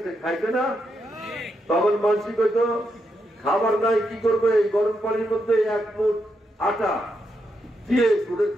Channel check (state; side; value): normal; both; correlation 0.82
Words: খাইছে না? তখন মানসিক হয়তো খাবার নাই, কি করবে, এই গরম পানির মধ্যে 1 মুঠ আটা দিয়ে